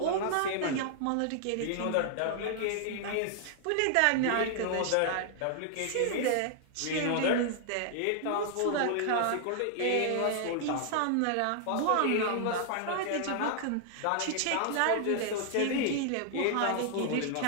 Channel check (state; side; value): different; both; correlation 0.00